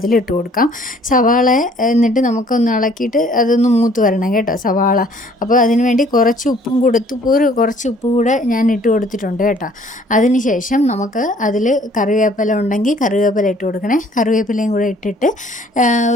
കൊടുക്കാം. സവാള എന്നിട്ട് നമുക്കൊന്ന് ഇളക്കിയിട്ട് അതൊന്ന് മൂത്ത് വരണം കേട്ടോ സവാള. അപ്പോൾ അതിന് വേണ്ടി കുറച്ച് ഉപ്പും കൊടുത്ത് കുറച്ച് ഉപ്പ് കൂടെ ഞാൻ ഇട്ട് കൊടുത്തിട്ടുണ്ട് കേട്ടോ. അതിനുശേഷം നമുക്ക് അതിൽ കറിവേപ്പില ഉണ്ടെങ്കിൽ കറിവേപ്പില ഇട്ട് കൊടുക്കണേ. കറിവേപ്പിലയും കൂടെ ഇട്ടിട്ട്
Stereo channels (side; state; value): both; normal; correlation 0.57